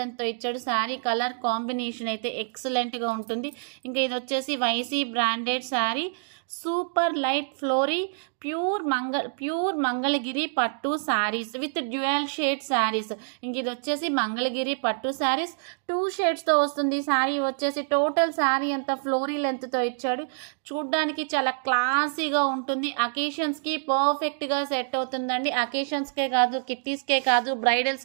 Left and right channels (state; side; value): silent; left; digital silence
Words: ఇచ్చాడు. శారీ కలర్ కాంబినేషన్ అయితే ఎక్సలెంట్గా ఉంటుంది. ఇంకా ఇది వచ్చేసి వైసీ branded sari, super light flowery pure Mangalagiri పట్టు saris with dual shade saris. ఇంక ఇది వచ్చేసి మంగళగిరి పట్టు శారీస్ 2 షేడ్స్తో వస్తుంది. శారీ వచ్చేసి టోటల్ శారీ అంతా ఫ్లోరీ లెంత్తో ఇచ్చాడు. చూడ్డానికి చాలా క్లాసీగా ఉంటుంది. అకేషన్స్కి పర్ఫెక్ట్గా సెట్ అవుతుందండి. అకేషన్స్కే కాదు, కిట్టీస్కే కాదు,